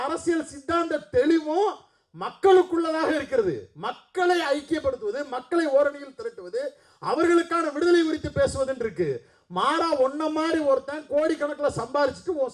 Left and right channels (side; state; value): both; identical; correlation 1.00